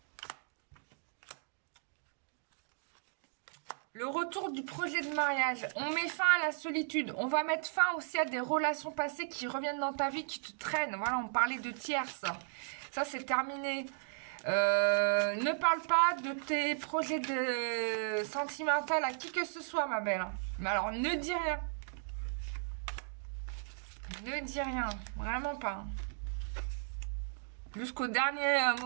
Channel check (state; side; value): silent; left; digital silence